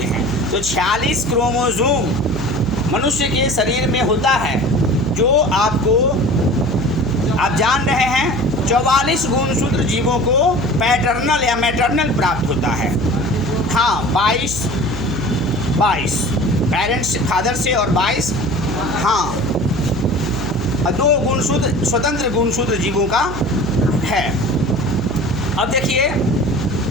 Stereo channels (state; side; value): noise; right; hum, 8 dB below the sound